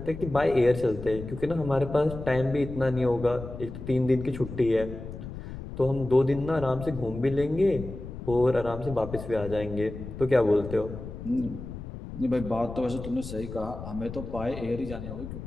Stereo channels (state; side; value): noise; left; rumble, 10 dB below the sound